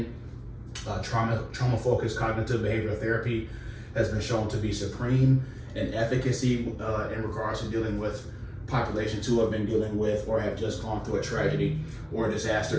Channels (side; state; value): both; identical; correlation 1.00